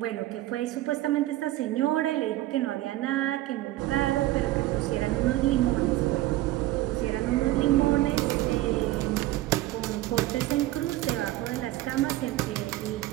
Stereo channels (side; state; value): left; quieter; 16.2 dB